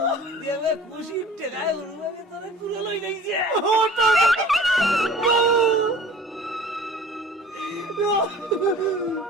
দেবে খুশি টেকায় হুরুবাবি তোরে কুলে লই যাইছে।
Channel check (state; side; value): normal; both; correlation 0.45